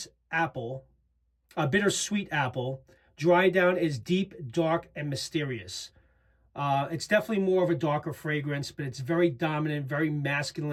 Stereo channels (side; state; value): both; identical; correlation 1.00